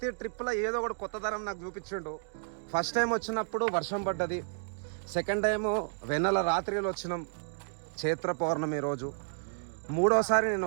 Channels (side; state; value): left; silent; digital silence